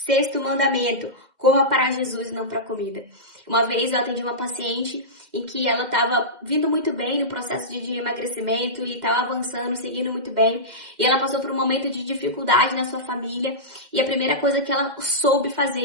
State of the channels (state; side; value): late; left; 2.0 ms